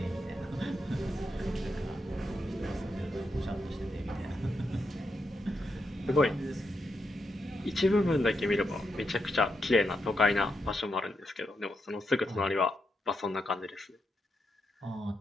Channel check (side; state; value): both; normal; correlation 0.84